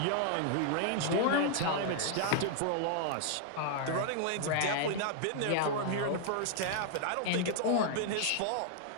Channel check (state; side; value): different; both; correlation 0.00